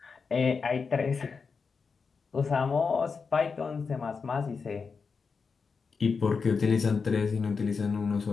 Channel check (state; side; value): quieter; right; 5.2 dB